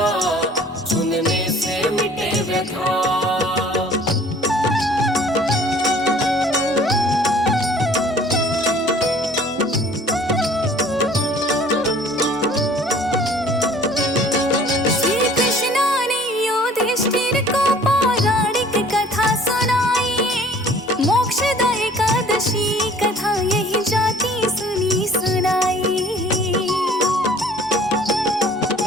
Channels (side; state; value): both; normal; correlation 0.52